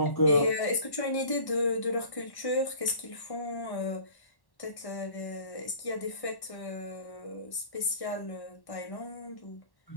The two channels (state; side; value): late; right; 1.1 ms